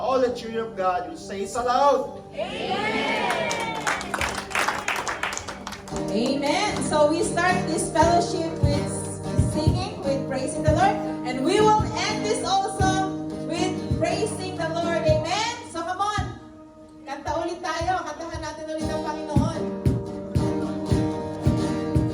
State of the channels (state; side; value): identical; both; correlation 1.00